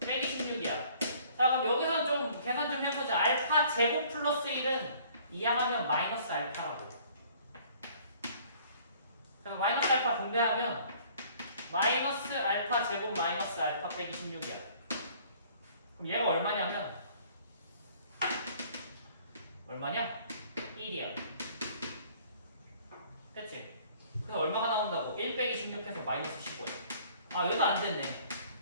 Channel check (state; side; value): inverted; both; correlation -0.55